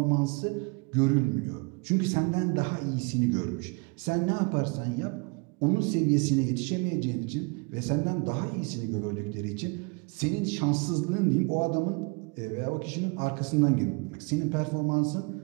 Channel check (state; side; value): quieter; left; 30.9 dB